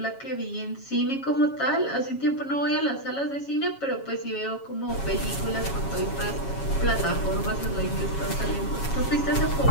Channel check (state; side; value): late; right; 7.3 ms